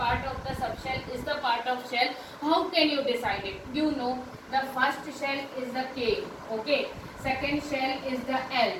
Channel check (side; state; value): both; identical; correlation 1.00